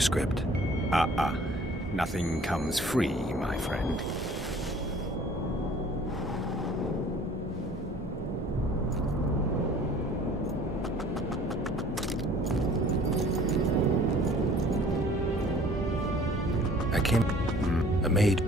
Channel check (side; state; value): both; normal; correlation 0.51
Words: Nothing comes free, my friend. I can't... A mage...